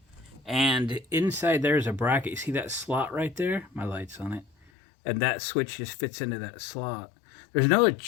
and inside there's a bracket. You see that slot right there? My light's on it. And that switch just fits into that slot. There's no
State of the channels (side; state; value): right; drops out; at 4.7 s